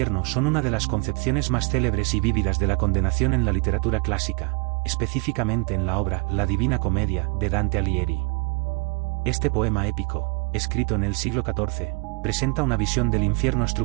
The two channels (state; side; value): quieter; left; 31.4 dB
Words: son una de las concepciones más célebres y vívidas de la condenación en la literatura clásica, específicamente en la obra La Divina Comedia de Dante Alighieri. Este poema épico, escrito en el siglo XIV, presenta una visión del infierno